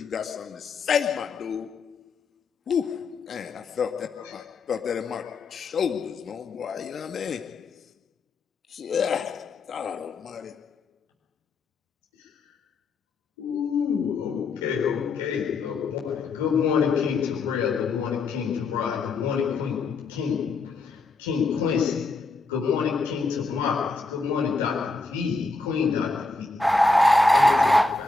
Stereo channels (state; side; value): quieter; right; 3.8 dB